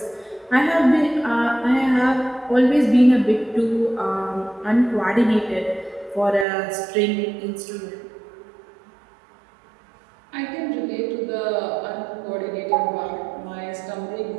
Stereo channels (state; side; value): drops out; left; at 6.5 s